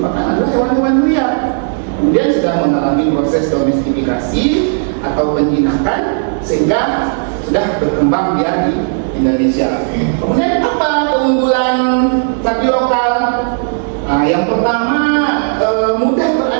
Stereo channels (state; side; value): silent; left; digital silence